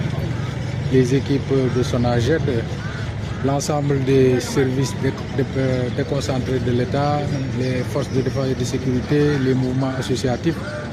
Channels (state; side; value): identical; both; correlation 1.00